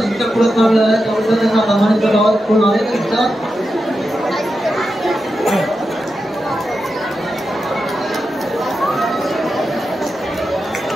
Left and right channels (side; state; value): both; normal; correlation 0.89